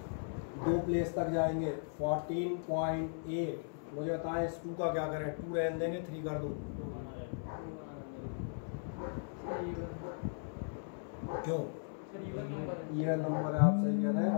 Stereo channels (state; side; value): silent; right; 53 dB below the other